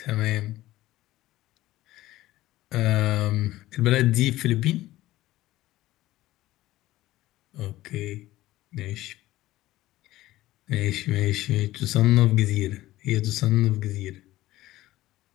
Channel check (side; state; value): right; quieter; 16.2 dB